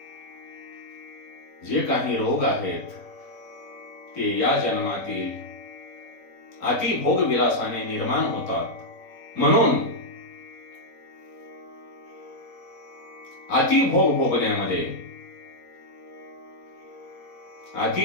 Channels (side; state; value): right; late; 4.4 ms